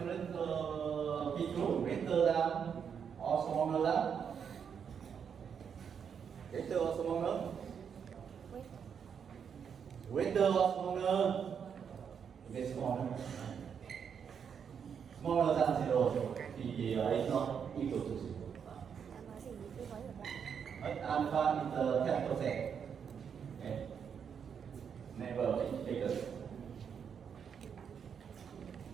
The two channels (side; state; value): left; quieter; 7.3 dB